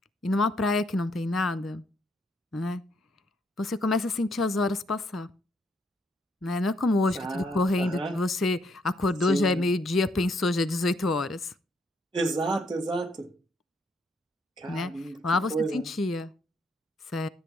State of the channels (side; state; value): both; normal; correlation 0.71